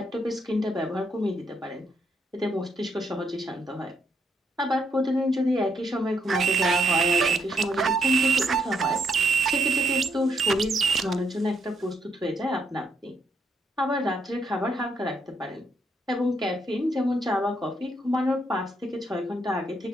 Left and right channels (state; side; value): normal; both; correlation 0.75